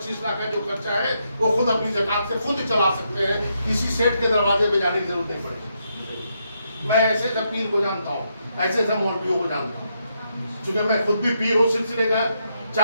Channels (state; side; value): inverted; both; correlation -0.79